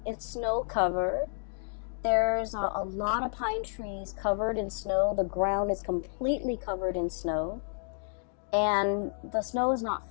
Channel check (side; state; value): right; silent; digital silence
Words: snow covered. There's a lot of pine trees covered in snow. The ground is completely covered in snow, and the snow is not